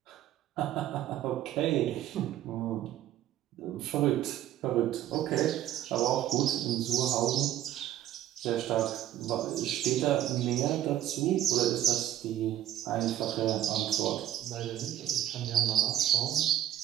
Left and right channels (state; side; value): quieter; left; 12.3 dB